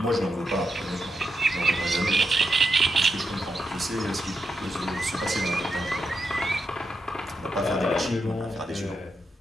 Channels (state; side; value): normal; both; correlation 0.84